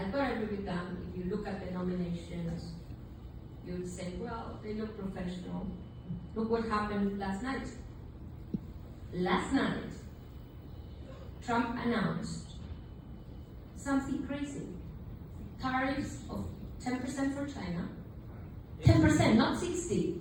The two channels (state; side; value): identical; both; correlation 1.00